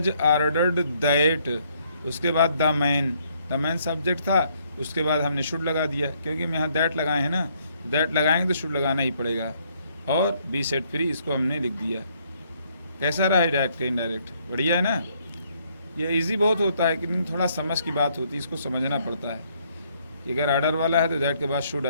आर्डर्ड दैट, उसके बाद द मैन सब्जेक्ट था, उसके बाद हमने शुड लगा दिया, क्योंकि हम यहाँ दैट लगाए हैं ना, दैट लगाएंगे तो शुड लगाना ही पड़ेगा। और बी सेट फ्री इसको हमने लिख दिया। कैसा रहा है डायरेक्ट का इनडायरेक्ट, बढ़िया है ना। ये इजी बहुत होता है, लेकिन थोड़ा समझ की बात होती है, इसको समझना पड़ता है कि अगर आर्डर वाला है तो दैट के बाद शुड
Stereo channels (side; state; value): both; inverted; correlation -0.69